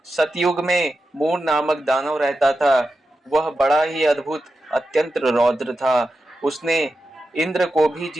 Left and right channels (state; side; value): normal; both; correlation 0.90